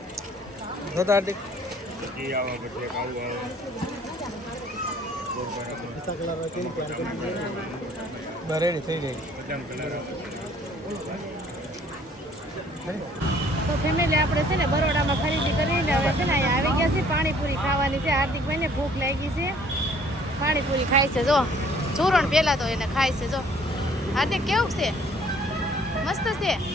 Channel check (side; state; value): both; normal; correlation 0.58